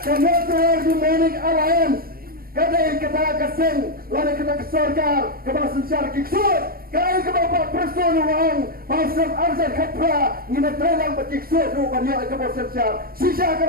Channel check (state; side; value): late; left; 0.43 ms